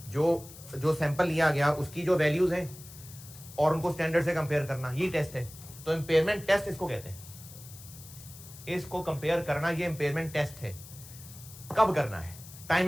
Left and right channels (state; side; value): noise; left; hiss, 17 dB below the sound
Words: जो सैंपल लिया गया उसकी जो वैल्यूज हैं और उनको स्टैंडर्ड से कंपेयर करना, ये टेस्ट है। तो इम्पेयरमेंट टेस्ट इसको कहते हैं। इसको कंपेयर करना, ये इम्पेयरमेंट टेस्ट है। कब करना है?